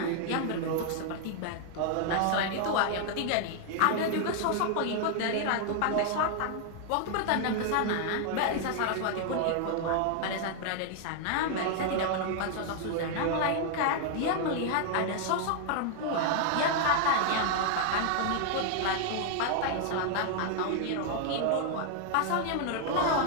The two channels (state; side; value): different; both; correlation 0.00